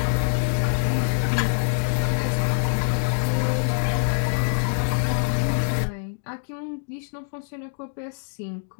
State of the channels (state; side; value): silent; right; digital silence